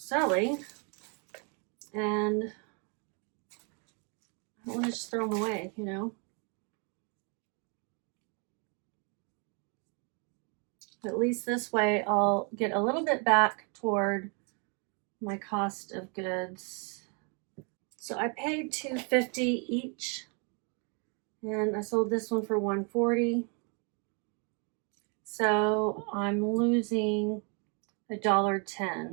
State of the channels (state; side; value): quieter; left; 36.3 dB